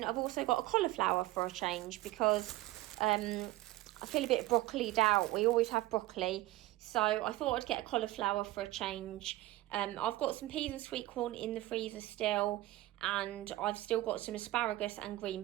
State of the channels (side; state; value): left; quieter; 17.4 dB